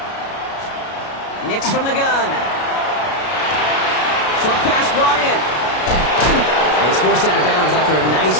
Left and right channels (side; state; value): right; late; 33 ms